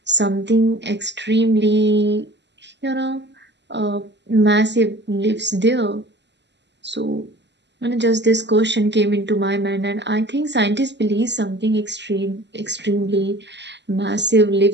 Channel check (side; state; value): left; late; 0.51 ms